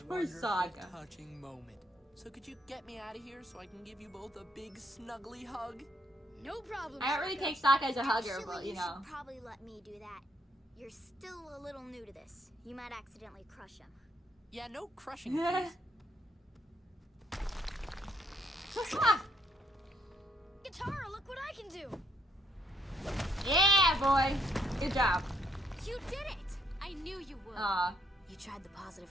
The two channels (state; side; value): normal; both; correlation 0.72